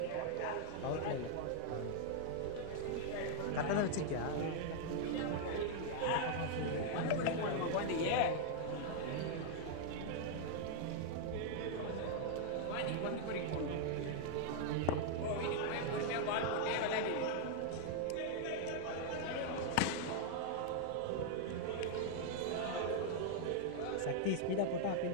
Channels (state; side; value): different; both; correlation 0.00